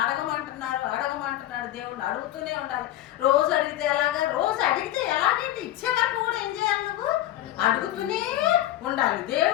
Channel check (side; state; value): right; quieter; 13.8 dB